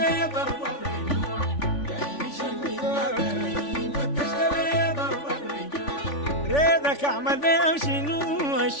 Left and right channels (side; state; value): right; late; 3.5 ms